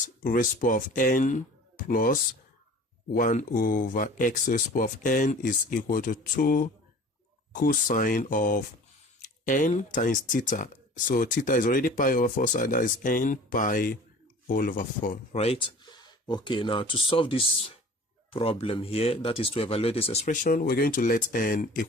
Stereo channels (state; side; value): normal; both; correlation 0.43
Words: raised to the power of n plus 1 over x raised to the power of n is equal to 2 cosine of n times theta. So theta is already pi over 4, so that is n pi all over 4, right? Okay, now to solve this problem here, that is to evaluate this expression, we're going to let n